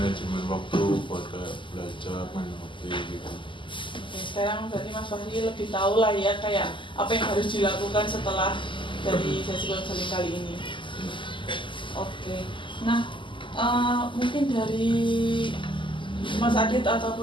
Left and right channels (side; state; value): right; late; 0.24 ms